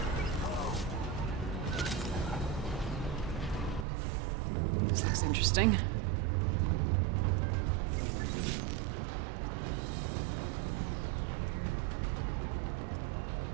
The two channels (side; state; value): left; drops out; at 3.9 s